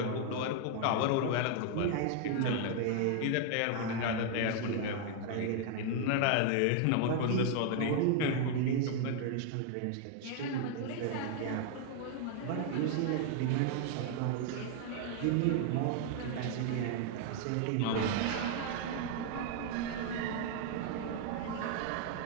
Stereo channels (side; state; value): both; different; correlation 0.00